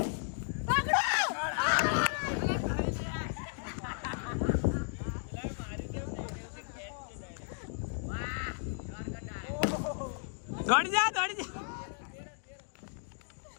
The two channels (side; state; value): right; silent; 55 dB below the other